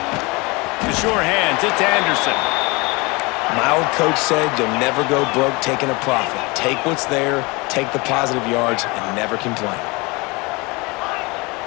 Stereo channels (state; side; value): quieter; right; 26.1 dB